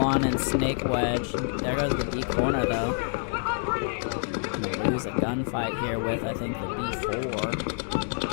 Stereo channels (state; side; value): silent; right; 60 dB below the other